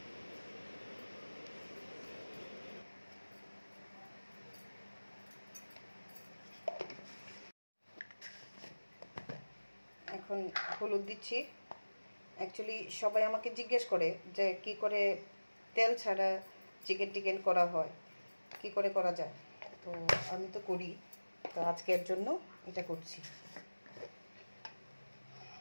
এখন হলুদ দিচ্ছি। অ্যাকচুয়ালি সবাই আমাকে জিজ্ঞেস করে যে কি করে তেল ছাড়া চিকেন করা হয়, কি করে করা যায়। তো আমি তো করি, তো আজকের জন্য এটা করছি।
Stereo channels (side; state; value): both; inverted; correlation -1.00